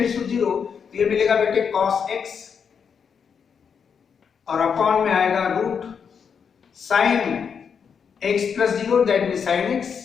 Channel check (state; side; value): quieter; right; 6.7 dB